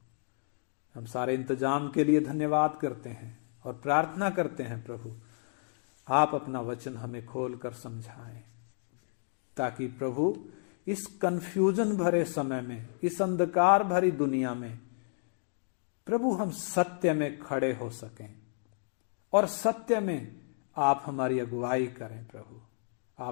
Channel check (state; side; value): silent; right; digital silence